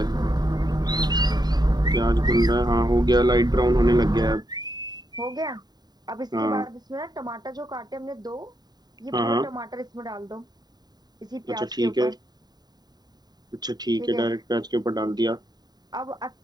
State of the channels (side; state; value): left; late; 0.20 ms